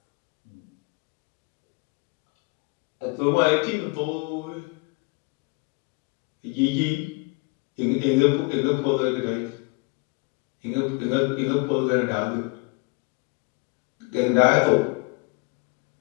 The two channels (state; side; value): quieter; right; 28.5 dB